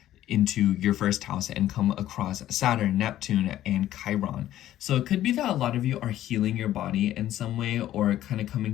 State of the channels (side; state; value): right; quieter; 13.0 dB